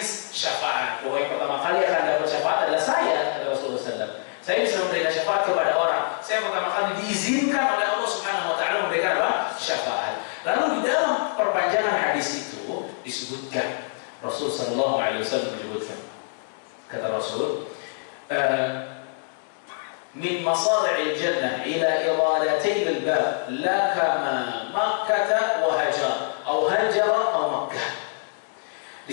syafaat. Bahwa yang pertama kali akan dapat syafaat adalah saya, kata Rasulullah SAW. Saya bisa memberikan syafaat kepada orang. Saya pertama kali diizinkan oleh Allah Subhanahu Wa Taala memberikan apa? Syafaat. Lalu di dalam perpanjangan hadis itu disebutkan, Rasulullah SAW menyebutkan, kata Rasul, min masari'il jannah ila iradatain al-bab la kama Makkah wa Hajar atau Hajar atau Makkah.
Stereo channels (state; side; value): silent; right; digital silence